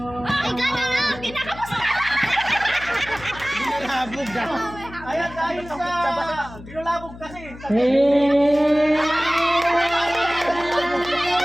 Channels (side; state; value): left; noise; hum, 16 dB below the sound